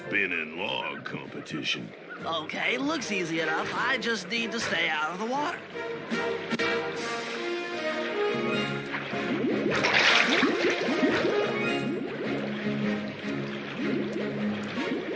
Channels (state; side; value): identical; both; correlation 1.00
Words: log competition. Okay, looks easy enough. I just need to stay out of the water.